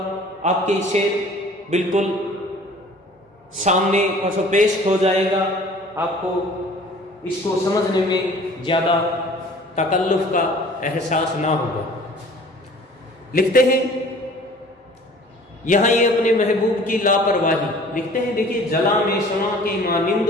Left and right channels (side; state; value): both; normal; correlation 0.49